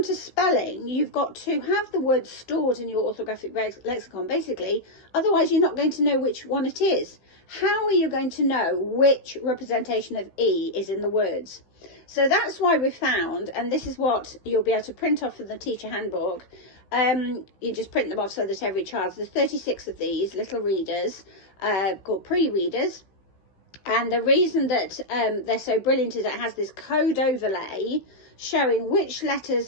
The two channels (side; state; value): right; late; 16 ms